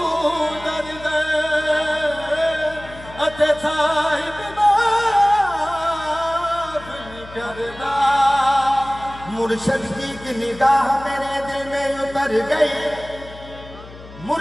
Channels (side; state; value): left; noise; hum, 17 dB below the sound